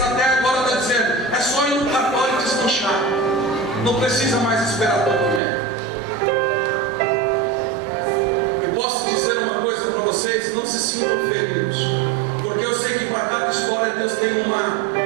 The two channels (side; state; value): left; drops out; at 5.4 s